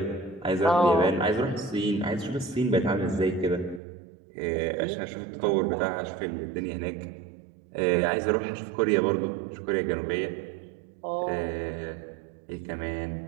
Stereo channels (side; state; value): left; drops out; at 3.8 s